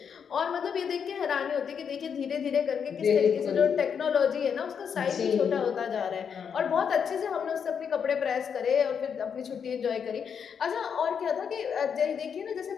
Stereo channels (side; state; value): right; quieter; 7.1 dB